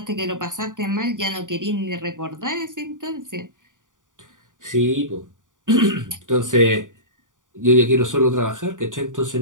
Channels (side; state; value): left; late; 0.88 ms